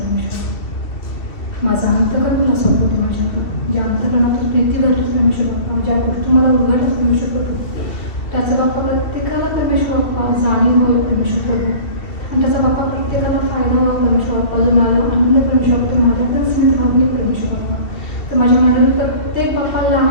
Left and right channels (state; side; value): late; right; 2.7 ms